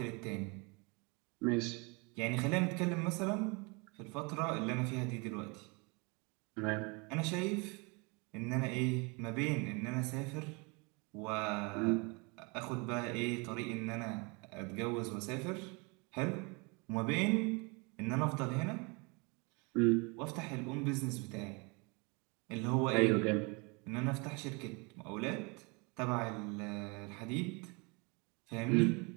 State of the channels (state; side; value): quieter; left; 29.8 dB